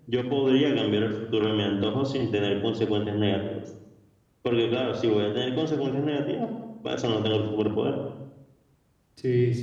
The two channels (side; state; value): both; identical; correlation 1.00